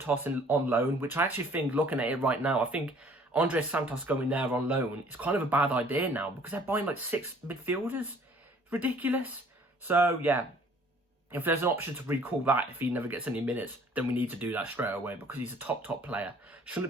on loan, which I actually think, looking at it right now, I think Andres Santos going there on loan is kind of a bad idea now, because they're buying like 6 midfielders. It's ridiculous. So yeah, if there's an option to recall that if he never gets any minutes, then we need to do that straight away, because he's a top player.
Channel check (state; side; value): normal; both; correlation 0.56